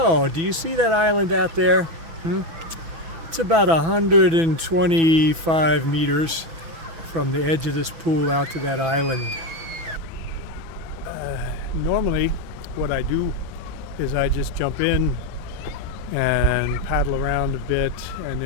do you see that island out there? It's about 125 meters from the edge of this pool out to that island. Normally, what I do is I just jump in and paddle around a bit and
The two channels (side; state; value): left; late; 6.1 ms